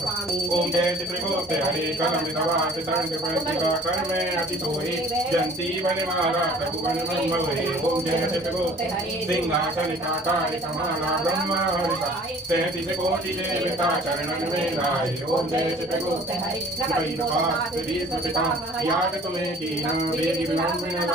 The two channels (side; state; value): both; normal; correlation 0.50